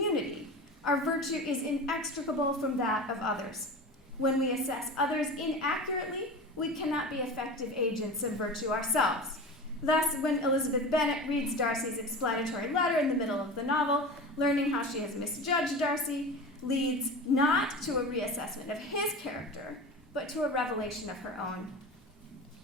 our virtue is inextricable from that of others. When we assess others inaccurately, we cannot be effective agents of virtue ourselves. Thus, when Elizabeth Bennet reads Darcy's explanatory letter in the middle of the novel, learning how she has misjudged Darcy leads not to a reassessment of his character, but to a revelation of her own.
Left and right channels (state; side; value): normal; both; correlation 0.31